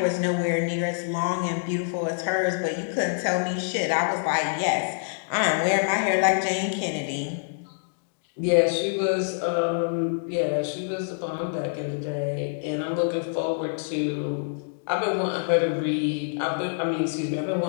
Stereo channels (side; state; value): right; silent; digital silence